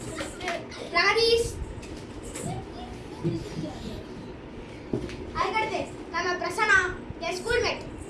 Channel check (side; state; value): both; identical; correlation 1.00